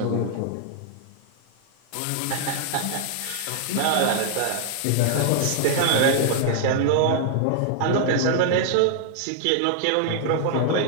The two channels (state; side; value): different; both; correlation -0.01